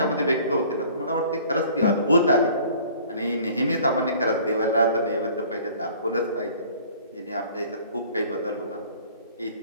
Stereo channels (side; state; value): both; inverted; correlation -0.51